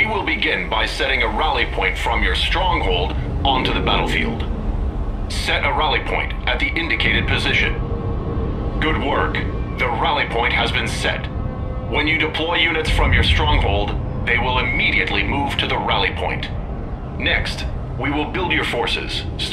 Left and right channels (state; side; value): identical; both; correlation 1.00